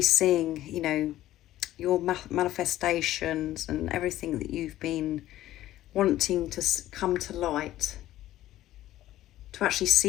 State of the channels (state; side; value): quieter; right; 14.3 dB